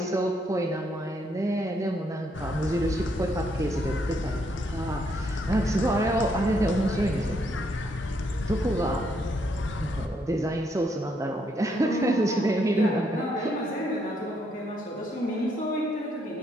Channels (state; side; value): normal; both; correlation 0.74